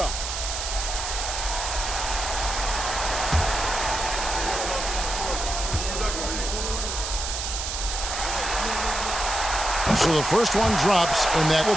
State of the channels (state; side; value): noise; right; hiss, 4 dB below the sound